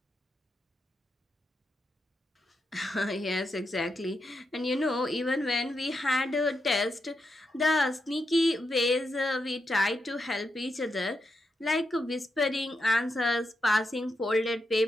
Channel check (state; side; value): normal; both; correlation 0.85